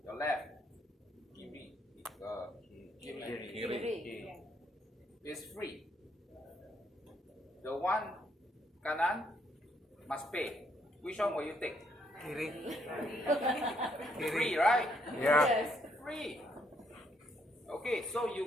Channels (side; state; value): both; normal; correlation 0.72